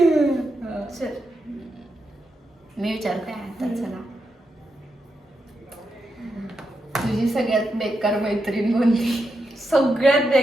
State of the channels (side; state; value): both; normal; correlation 0.85